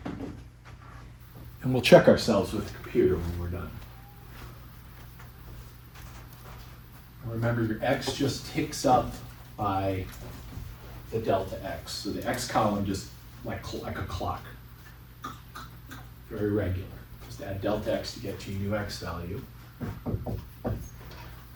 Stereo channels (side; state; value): both; identical; correlation 1.00